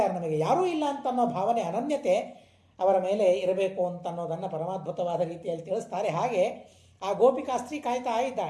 ನಮಗೆ ಯಾರೂ ಇಲ್ಲ ಅಂತ ಅನ್ನೋ ಭಾವನೆ, ಅನನ್ಯತೆ ಅವರ ಮೇಲೆ ಇರಬೇಕು ಅಂತ ಅನ್ನೋದನ್ನು ಪರಮಾದ್ಭುತವಾದ ರೀತಿಯಲ್ಲಿ ತಿಳಿಸ್ತಾರೆ. ಹಾಗೆ ಆ ಗೋಪಿಕಾಸ್ತ್ರೀ ಕಾಯ್ತಾ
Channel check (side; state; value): both; identical; correlation 1.00